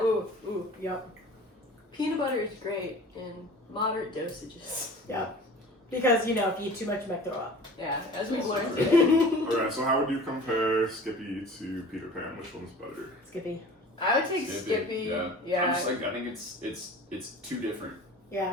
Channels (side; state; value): both; normal; correlation 0.42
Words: Ooh. Yep. Peanut butter is great in moderate dosages. Yep. Because you know, if you eat too much, you might throw up. Yeah, as we've learned today. Alright, so how would you compare Skippy to Peter Pan? Which one's better? Skippy. I would take Skippy. Yeah. I'm just like I think it's too different.